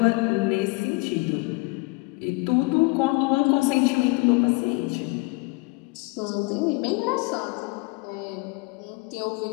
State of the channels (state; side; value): quieter; right; 27.1 dB